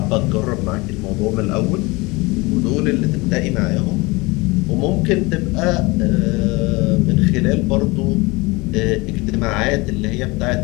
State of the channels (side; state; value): right; quieter; 24.5 dB